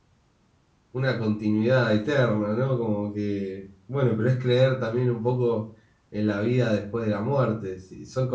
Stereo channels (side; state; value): both; identical; correlation 1.00